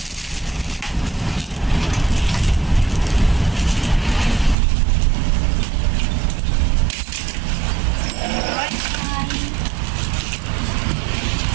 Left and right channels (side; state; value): left; drops out; at 4.5 s